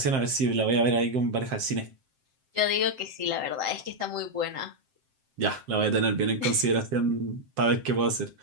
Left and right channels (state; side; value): late; left; 7.6 ms